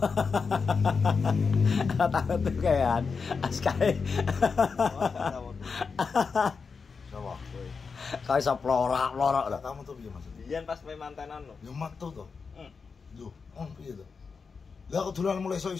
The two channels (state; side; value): quieter; right; 5.2 dB